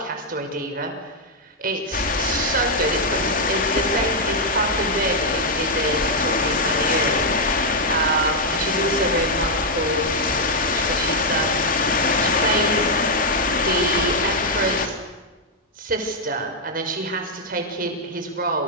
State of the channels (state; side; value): normal; both; correlation -0.02